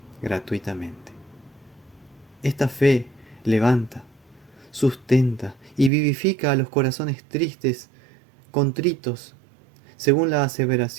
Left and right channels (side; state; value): left; drops out; at 5.9 s